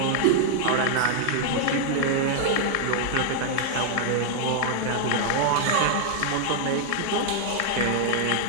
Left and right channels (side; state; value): both; different; correlation -0.01